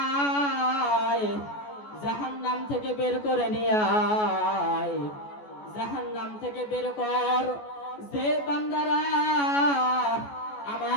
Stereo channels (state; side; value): late; right; 14 ms